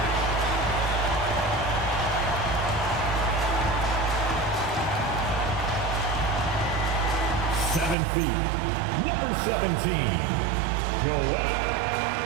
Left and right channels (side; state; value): left; drops out; at 8.0 s